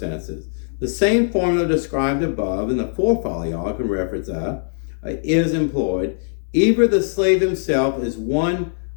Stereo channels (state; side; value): silent; right; 65 dB below the other